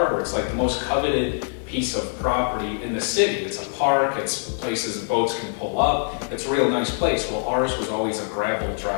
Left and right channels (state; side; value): silent; right; 59 dB below the other